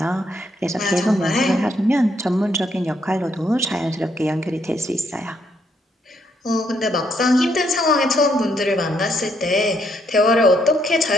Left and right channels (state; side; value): normal; both; correlation 0.73